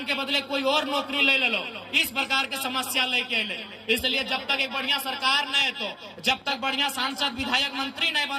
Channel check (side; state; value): both; identical; correlation 1.00